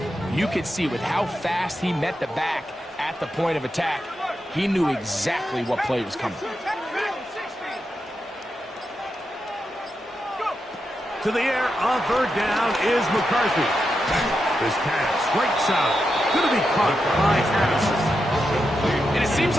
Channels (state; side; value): normal; both; correlation 0.87